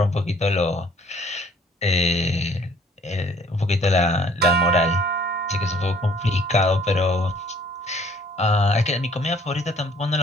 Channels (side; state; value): both; normal; correlation 0.58